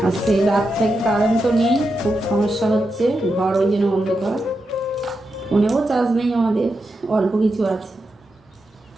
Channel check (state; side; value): normal; both; correlation 0.87